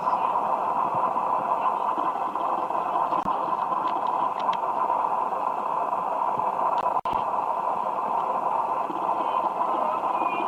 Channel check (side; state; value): both; identical; correlation 1.00